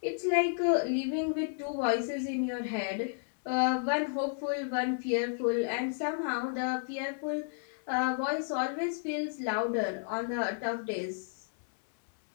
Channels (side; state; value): right; silent; 56 dB below the other